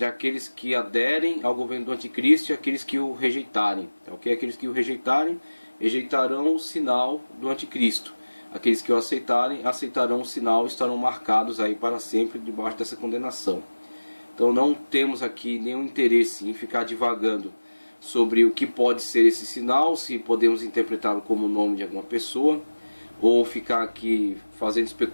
aqueles que aderem ao governo do anticristo e aqueles que o rejeitarem, tá ok? Aqueles que o rejeitarem, rejeitarão o sinal do anticristo. Aqueles que o aceitarão o sinal e estarão marcados aí para sempre debaixo dessa condenação. Então não temos aqui nenhum interesse em ficar divagando sobre o que pode ser esse sinal, se podemos interpretá-lo como o nome de alguma pessoa, ou ficar aqui fazendo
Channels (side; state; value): both; inverted; correlation -1.00